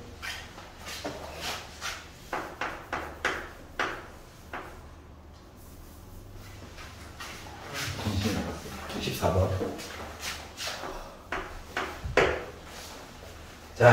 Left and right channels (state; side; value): identical; both; correlation 1.00